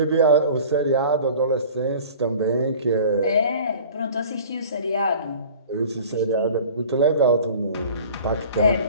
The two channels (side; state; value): both; inverted; correlation -0.44